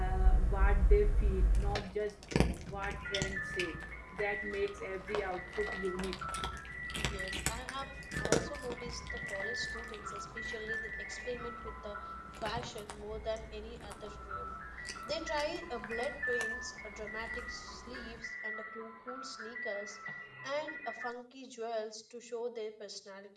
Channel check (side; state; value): both; identical; correlation 1.00